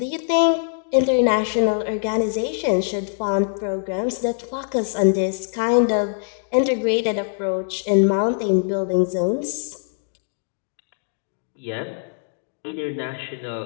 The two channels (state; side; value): silent; right; digital silence